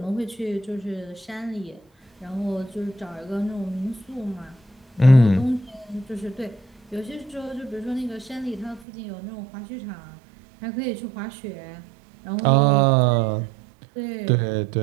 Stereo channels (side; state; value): left; drops out; at 8.8 s